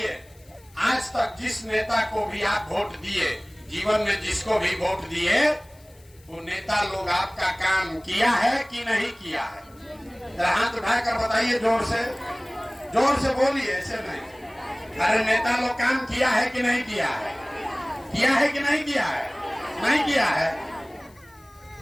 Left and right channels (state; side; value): noise; left; hiss, 29 dB below the sound